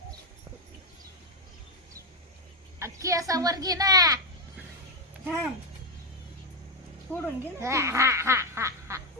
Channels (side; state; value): both; normal; correlation 0.06